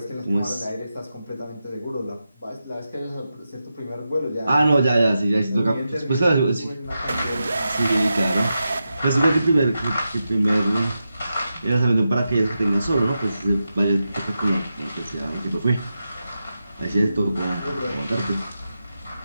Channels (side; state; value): both; inverted; correlation -0.89